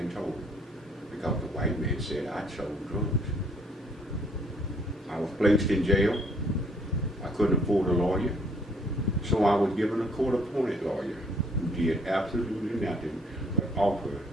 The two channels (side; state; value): both; normal; correlation 0.63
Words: told her, because the white man said I sold drugs. I was placed in jail. I couldn't afford a lawyer, so I was given a court-appointed lawyer who did absolutely nothing but offer